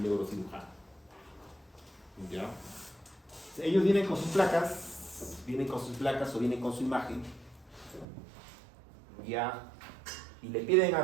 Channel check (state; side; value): drops out; left; at 8.1 s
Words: neurocirujano. ¿Ya? Ellos vienen con sus placas o vienen con su imagen, ¿ya? Y le piden